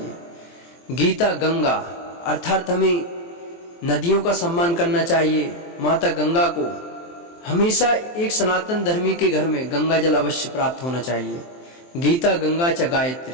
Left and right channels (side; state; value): right; late; 23 ms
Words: गीता गंगा अर्थात हमें नदियों का सम्मान करना चाहिए। माता गंगा को हमेशा एक सनातन धर्मी के घर में गंगा जल अवश्य प्राप्त होना चाहिए। गीता गंगा च